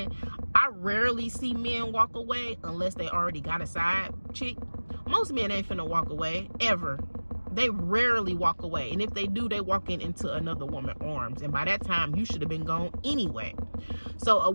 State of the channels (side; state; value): both; inverted; correlation -1.00